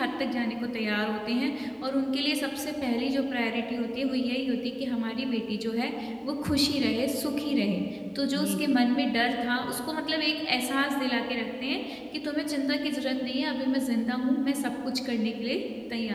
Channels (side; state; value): both; identical; correlation 1.00